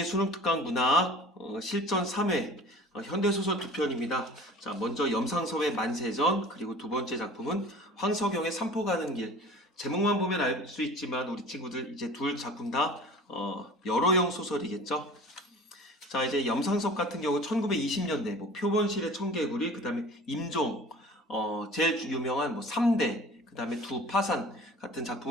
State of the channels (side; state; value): both; normal; correlation 0.43